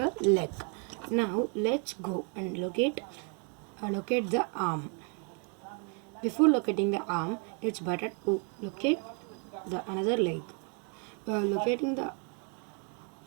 leg. Now let's go and locate the arm. Before locating the arm, it's better to locate the another leg. Locating the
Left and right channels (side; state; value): left; quieter; 39.5 dB